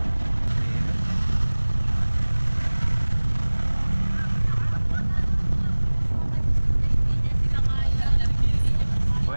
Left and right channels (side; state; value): both; inverted; correlation -1.00